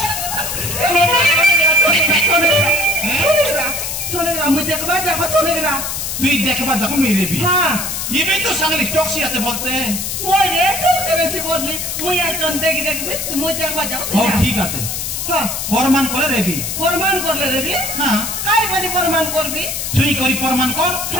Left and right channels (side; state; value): left; noise; hiss, 3 dB below the sound